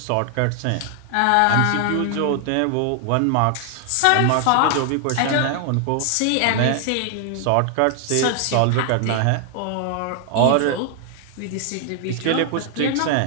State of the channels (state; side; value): different; both; correlation 0.00